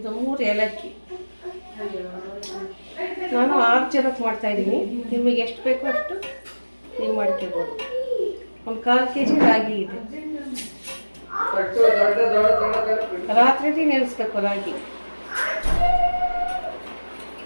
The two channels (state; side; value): inverted; both; correlation -1.00